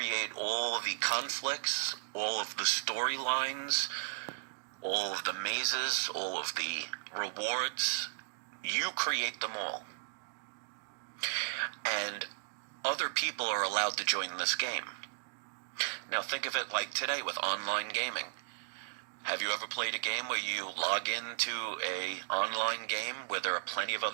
all the conflicts, all of the storylines, all of the mazes, all of the rewards. You create them all. And other people are allowed to join this game. Now think of it like today with online gaming. Have you ever played a game where you log into an online game where there are plenty of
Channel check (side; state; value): left; silent; digital silence